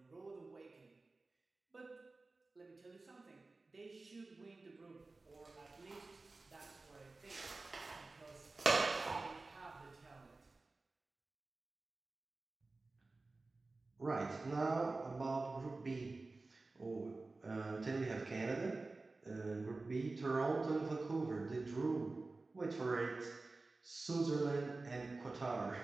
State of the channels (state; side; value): quieter; left; 3.4 dB